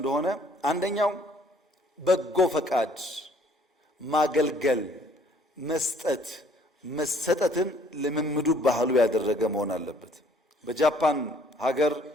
አንደኛው በጎ ፈቃድ፣ ማገልገል፣ መስጠት፣ መሰጠትን ልምምዱ ባህሉ ያደረገ መሆን አለበት። በጃፓን ሀገር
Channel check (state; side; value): normal; both; correlation 0.60